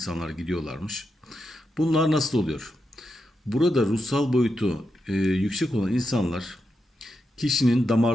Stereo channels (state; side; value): normal; both; correlation 0.86